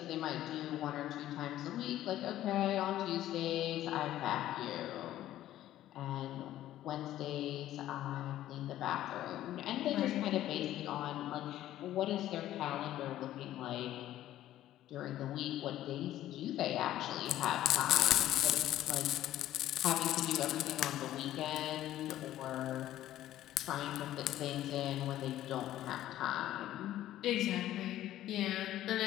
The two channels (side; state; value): right; quieter; 13.4 dB